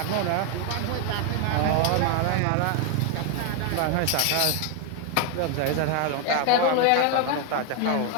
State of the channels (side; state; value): both; different; correlation 0.01